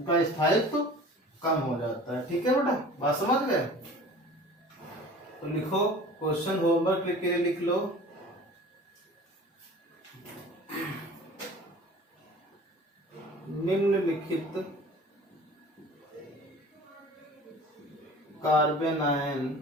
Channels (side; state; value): both; normal; correlation 0.43